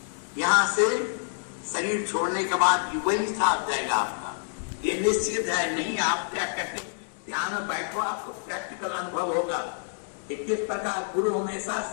यहां से शरीर छोड़ने के बाद वही साथ जाएगा आपका, ये निश्चित है। नहीं आप क्या कहते, ध्यान में बैठो, आपको प्रैक्टिकल अनुभव होगा कि किस प्रकार गुरु हमेशा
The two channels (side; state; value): right; silent; digital silence